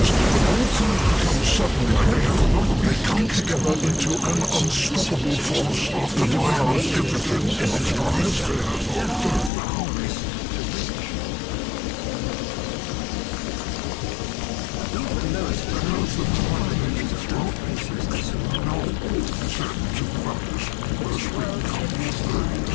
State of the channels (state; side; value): drops out; right; at 9.5 s